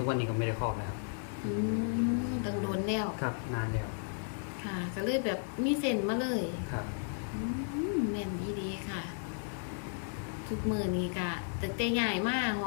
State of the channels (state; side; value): silent; right; digital silence